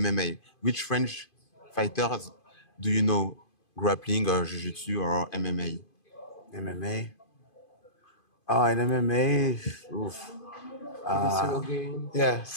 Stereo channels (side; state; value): right; late; 2.5 ms